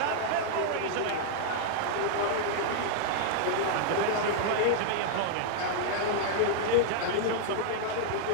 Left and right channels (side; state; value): both; different; correlation -0.01